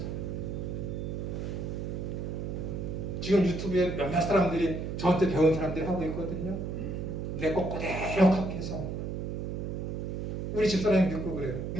지금 유튜브에 몇몇 사람들이 저한테 배운 사람들이 하고 있거든요. 내 거 그대로 카피해서 우리 집사람이 믿고 그래요.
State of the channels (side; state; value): right; noise; hum, 4 dB below the sound